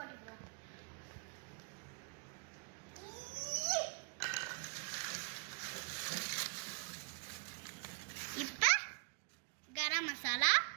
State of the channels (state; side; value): quieter; left; 37.4 dB